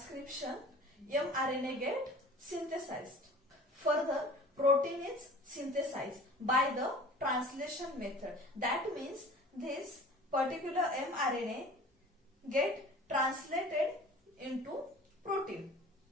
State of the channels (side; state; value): both; normal; correlation 0.44